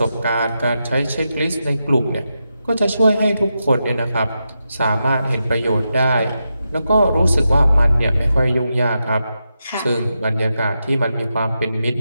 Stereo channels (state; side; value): inverted; both; correlation -0.87